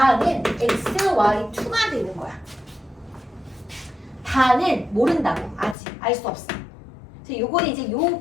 xy2가 되는 거야. 다는 모른다고. 아직 알 수 없어. 그래서 요거는 이제 요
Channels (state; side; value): drops out; right; at 5.8 s